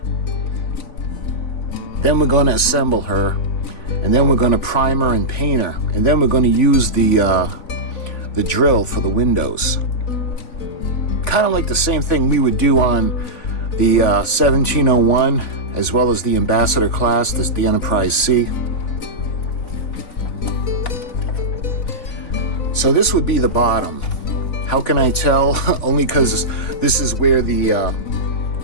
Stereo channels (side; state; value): right; late; 3.5 ms